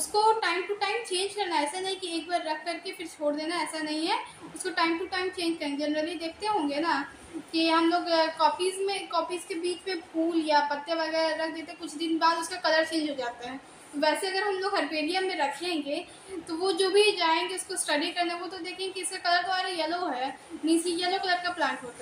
टाइम टू टाइम चेंज करना है, ऐसा नहीं कि एक बार रख करके फिर छोड़ देना, ऐसा नहीं है। उसको टाइम टू टाइम चेंज करेंगे। जनरली देखते होंगे ना कि हम लोग कॉपीज़ के बीच में फूल या पत्ते वगैरह रख देते, कुछ दिन बाद उसका कलर चेंज हो जाता है। वैसे अगर हम लोग हर्बेरियम में रखेंगे तो वो जो भी जाएंगे उसको स्टडी करने, वो तो देखेंगे कि इसका कलर तो आ रहा येलो है, मीन्स येलो कलर का प्लांट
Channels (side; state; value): both; identical; correlation 1.00